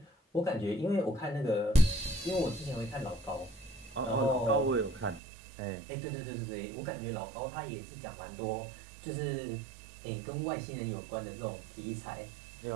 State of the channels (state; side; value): drops out; left; at 5.2 s